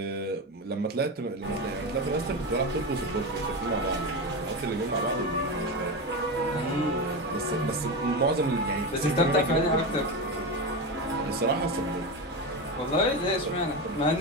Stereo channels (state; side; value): normal; both; correlation 0.18